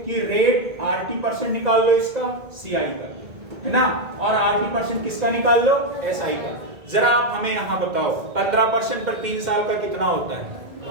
रेट 80% निकाल लो इसका CI का, है ना, और 80% किसका निकाल लो SI का। जरा आप हमें यहाँ बताओ 15% पर 3 साल का कितना होता है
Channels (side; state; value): left; late; 1.8 ms